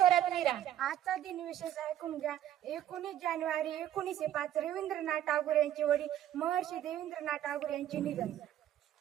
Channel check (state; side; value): quieter; left; 11.6 dB